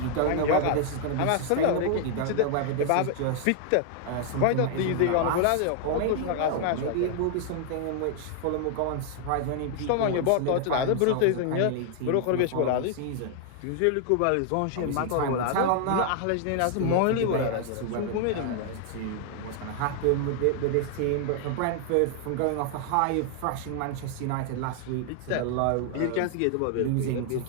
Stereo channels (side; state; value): both; different; correlation 0.00